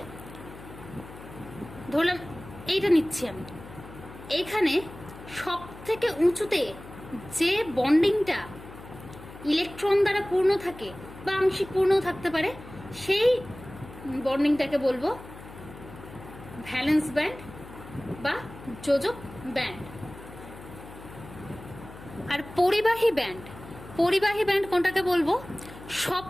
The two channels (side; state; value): left; noise; hum, 16 dB below the sound